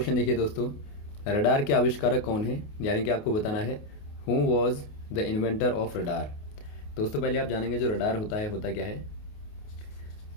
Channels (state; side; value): late; right; 28 ms